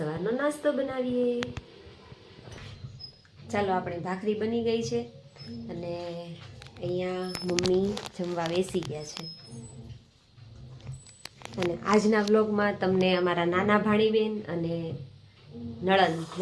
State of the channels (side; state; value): both; identical; correlation 1.00